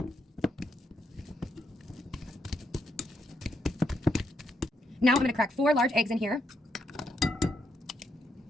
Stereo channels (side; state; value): both; normal; correlation 0.78